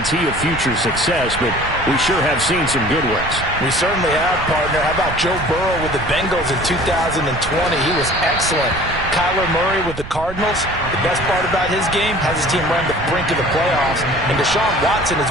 of future success, but we sure have seen some good ones. We certainly have, partner. How about Joe Burrow with the Bengals in 2020? He was excellent. Kyler Murray with the Cardinals. The best part about his game has his team run the brink of the playoffs. And Deshaun Watson has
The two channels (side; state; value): right; noise; rumble, 11 dB below the sound